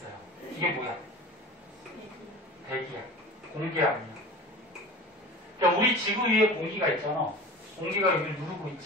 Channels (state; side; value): normal; both; correlation 0.36